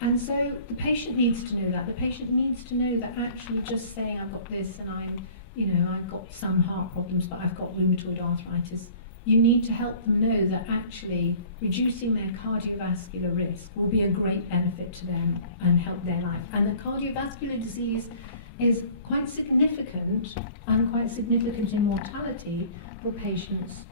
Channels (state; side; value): inverted; both; correlation -0.49